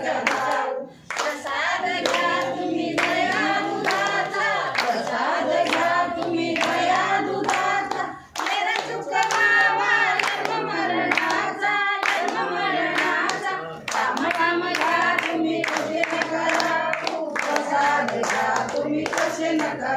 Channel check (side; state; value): both; identical; correlation 1.00